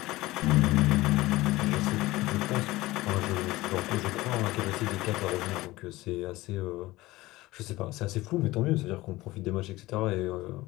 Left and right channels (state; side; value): quieter; right; 18.9 dB